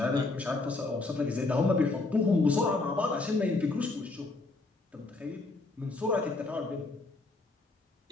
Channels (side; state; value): right; quieter; 3.3 dB